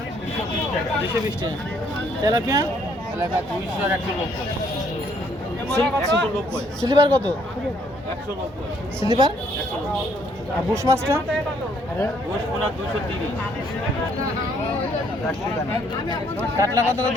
220 টাকা। তেলাপিয়া? তেলাপিয়া 200 আর 190। সিলভার কত? 190। সিলভার? আর বুশ মাছটা? বুশ পোনা 230। কাতলা কত করে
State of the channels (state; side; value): normal; both; correlation 0.67